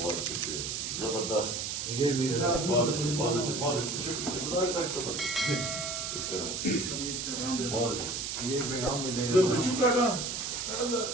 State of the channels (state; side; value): noise; right; hiss, 3 dB below the sound